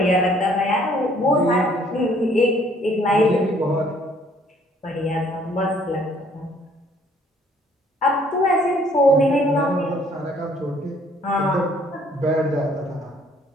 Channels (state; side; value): normal; both; correlation 0.61